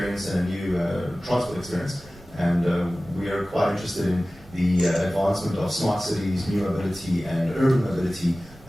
and a new transport experience. And we are quite interested in the advancement of smart cities, new mobility, and urban mobility,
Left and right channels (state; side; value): normal; both; correlation 0.97